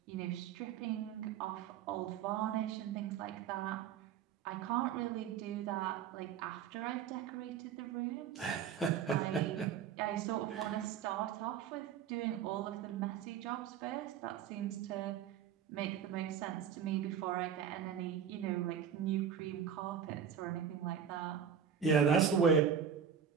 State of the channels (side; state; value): left; quieter; 8.0 dB